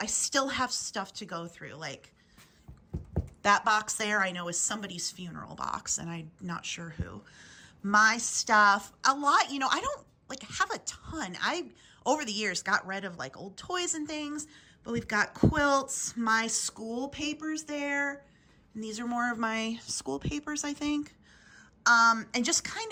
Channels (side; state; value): both; identical; correlation 1.00